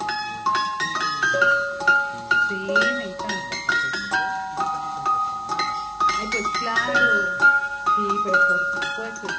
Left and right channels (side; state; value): both; identical; correlation 1.00